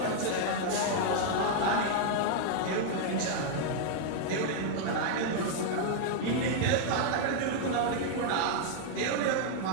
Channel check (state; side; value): different; both; correlation 0.00